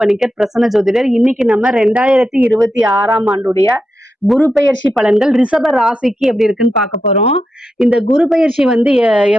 பணிக்கர், பிரசன்ன ஜோதிடர். இன்னைக்கு நம்ம 2026ஆம் ஆண்டுடைய குரு பெயர்ச்சி பலன்கள் ரிஷப ராசிக்கு எப்படி இருக்குன்னு பார்க்க போறோம். இந்த குரு பெயர்ச்சி வந்து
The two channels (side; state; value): both; normal; correlation 0.87